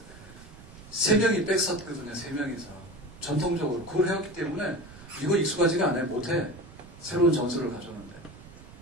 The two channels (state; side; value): noise; right; rumble, 19 dB below the sound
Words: 3명이 백서거든요, 3명이서. 전통적으로. 그걸 해왔기 때문에 이거 익숙하지가 않아요, 못해. 새로운 전술을 가져오는데.